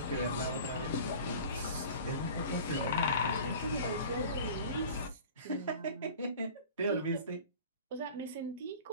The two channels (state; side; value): inverted; both; correlation -0.41